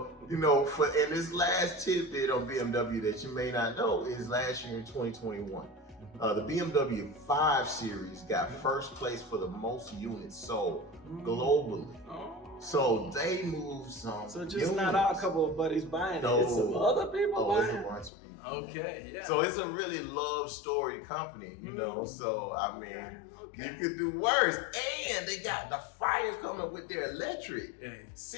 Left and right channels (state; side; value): drops out; right; at 18.1 s